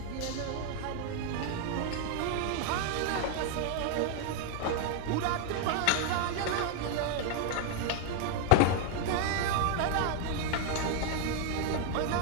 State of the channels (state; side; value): different; both; correlation 0.00